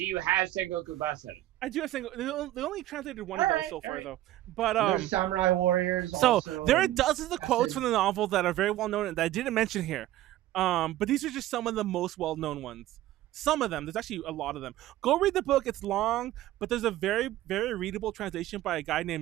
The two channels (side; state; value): left; quieter; 14.6 dB